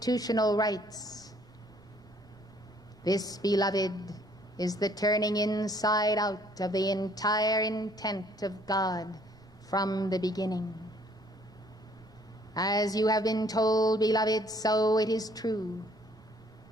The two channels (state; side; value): noise; right; rumble, 27 dB below the sound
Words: rights. This, beloved, is the turning inside out of the entire intent of God from the beginning. As you have been told, beloved, so it is true